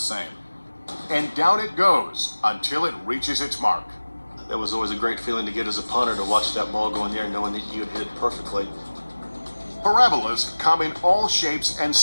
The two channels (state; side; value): inverted; both; correlation -1.00